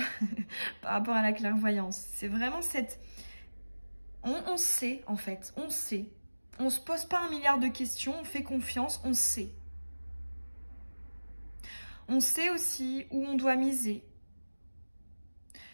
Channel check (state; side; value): inverted; both; correlation -1.00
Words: par rapport à la clairvoyance. C'est vraiment cette... On sait, en fait, on sait. On ne se pose pas 1 milliard de questions, on fait confiance, on sait. On sait aussi où on doit miser.